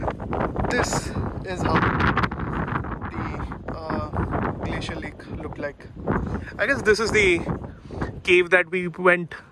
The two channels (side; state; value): both; identical; correlation 1.00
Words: This is how the glacial lake looked like. I guess this is the cave that we went